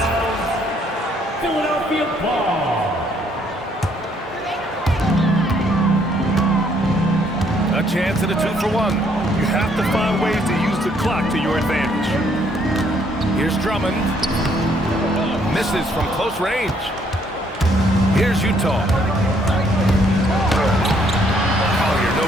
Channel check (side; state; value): both; normal; correlation 0.67